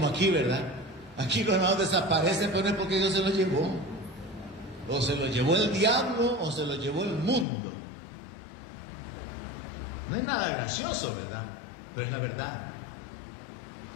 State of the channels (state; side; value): drops out; right; at 7.5 s